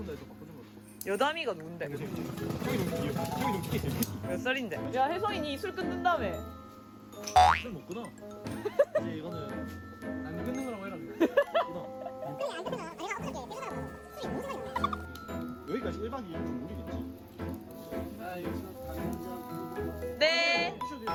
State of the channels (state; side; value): identical; both; correlation 1.00